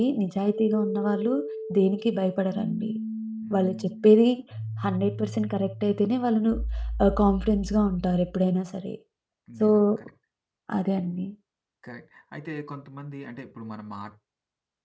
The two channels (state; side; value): identical; both; correlation 1.00